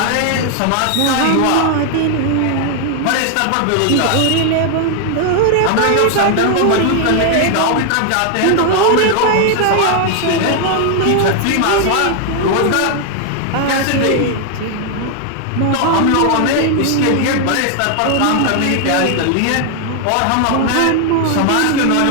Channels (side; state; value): both; different; correlation 0.00